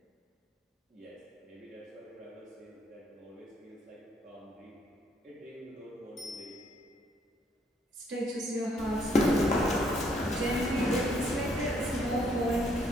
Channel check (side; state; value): both; normal; correlation 0.68